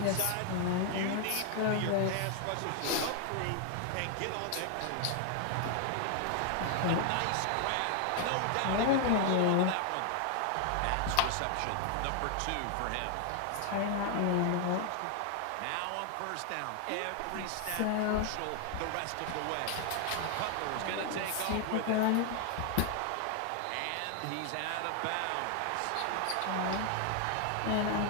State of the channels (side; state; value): both; different; correlation 0.00